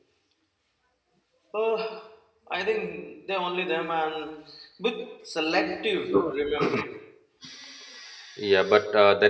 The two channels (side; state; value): both; identical; correlation 1.00